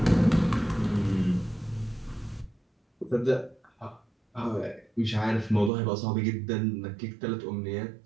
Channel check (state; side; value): drops out; left; at 5.7 s